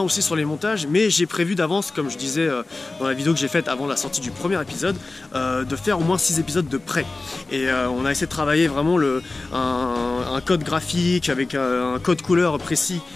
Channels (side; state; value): right; quieter; 3.3 dB